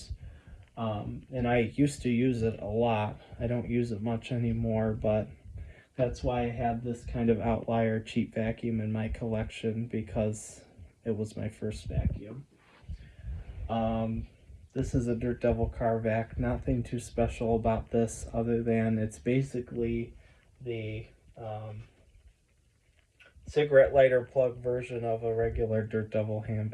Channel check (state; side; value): identical; both; correlation 1.00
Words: And I used to use it a lot. I don't use it much anymore, but that's why I have this kind of outlier cheap vacuum in my collection, because it was my first vacuum. This is a Dirt Devil car vac. Nothing too special about this other than it's basically the cigarette lighter plug version of a regular Dirt Devil hand